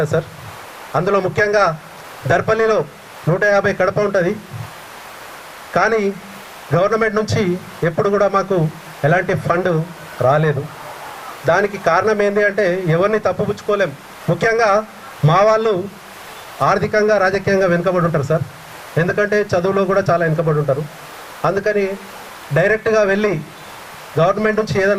సార్. అందులో ముఖ్యంగా దర్పల్లిలో 150 కడప ఉంటుంది. కానీ గవర్నమెంట్ నుంచి ఎప్పుడు కూడా మాకు ఎలాంటి ఫండ్ రాలేదు. దానికి కారణం ఏంటి అంటే ఎవరిని తప్పుపుచ్చుకోలేం. ముఖ్యంగా మా వాళ్ళు ఆర్థికంగా రాజకీయంగా వెనుకబడి ఉంటారు సార్. ఎందుకంటే చదువులో కూడా చాలా వెనుకబడి ఉంటారు. అందుకని డైరెక్ట్గా వెళ్ళి గవర్నమెంట్ నుంచి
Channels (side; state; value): both; identical; correlation 1.00